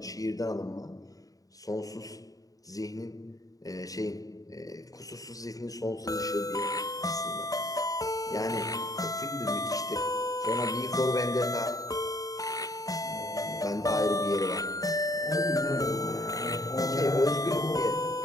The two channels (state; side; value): late; right; 0.17 ms